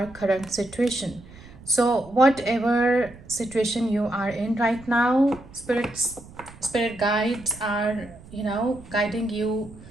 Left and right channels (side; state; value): right; noise; rumble, 20 dB below the sound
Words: current situation. So whatever situation you are in right now, spirit guides are, guiding you